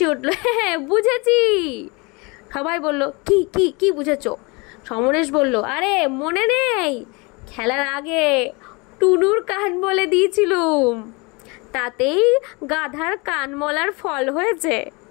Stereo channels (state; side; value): quieter; right; 28.1 dB